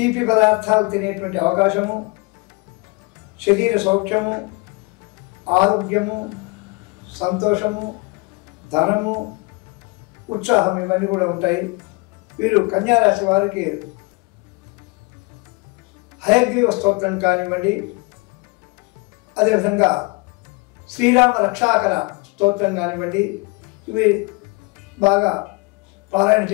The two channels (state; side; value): quieter; right; 27.3 dB